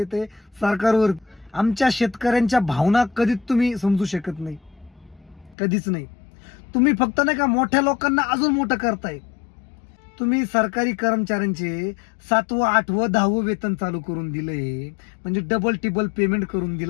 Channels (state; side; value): drops out; right; at 5.6 s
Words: सरकारवर. आमच्या शेतकऱ्यांच्या भावना कधीच तुम्ही समजू शकत नाही, कधीच नाही. तुम्ही फक्त नाही का मोठ्या लोकांना अजून मोठं करताय. तुम्ही सरकारी कर्मचाऱ्यांचे 7वं 8वं 10वं वेतन चालू करून दिलंय, म्हणजे डबल टिबल पेमेंट करून